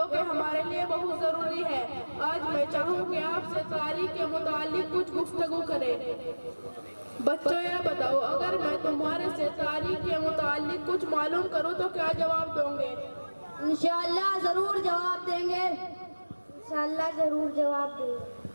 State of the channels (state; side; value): inverted; both; correlation -1.00